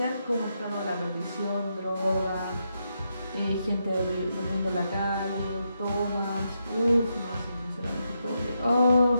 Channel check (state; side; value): inverted; both; correlation -0.83